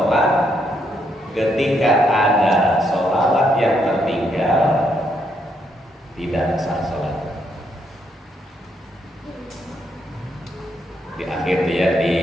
ketika ada solawat yang tertinggal, tidak sah sholat.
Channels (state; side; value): normal; both; correlation 0.76